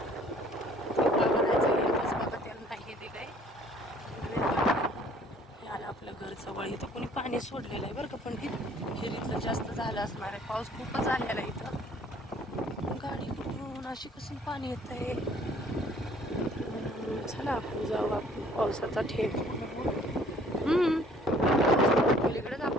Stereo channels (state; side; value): normal; both; correlation 0.57